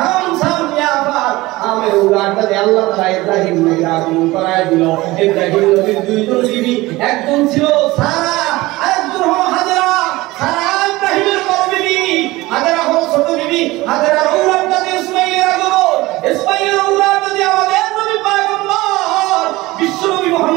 শাম, ইয়াফাত। আমের উলাটাতে আল্লাহ তাআলা ইব্রাহিম নবীর আগমন করায় দিল। ইব্রাহিম নবীর দুইজন বিবি, একজন ছিল সারা, আরেকজন হলো হাজেরা। সারা ইব্রাহিমের বড় বিবি, হাজেরা হলো ছোট বিবি। হাজেরার উলাটাতে ইসমাঈলের আগমন, ইসমাঈলের উলাটাতে আমাদের নবী পয়গম্বর বিশ্বনবী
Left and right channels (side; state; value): left; quieter; 19.8 dB